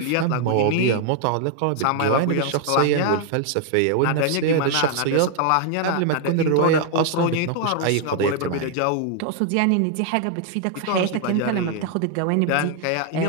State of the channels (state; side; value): different; both; correlation 0.00